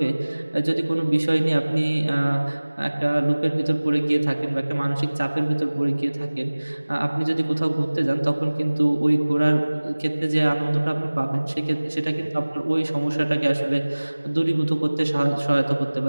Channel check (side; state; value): both; inverted; correlation -1.00